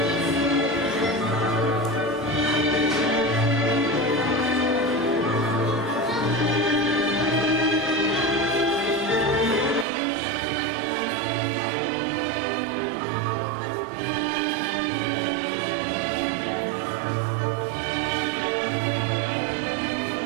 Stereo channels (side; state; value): left; drops out; at 9.9 s